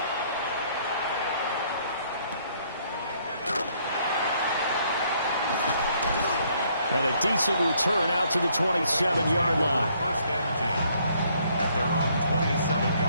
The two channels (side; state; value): both; inverted; correlation -0.66